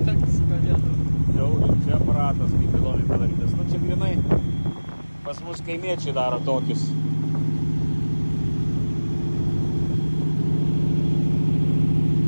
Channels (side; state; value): both; inverted; correlation -1.00